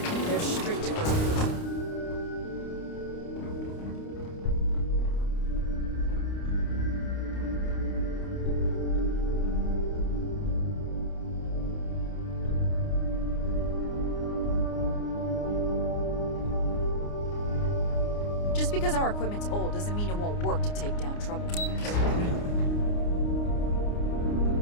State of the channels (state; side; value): late; right; 29 ms